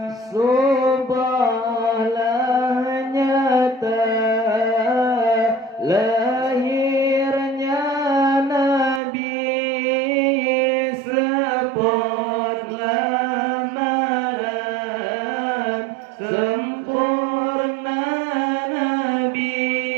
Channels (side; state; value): left; drops out; at 9.0 s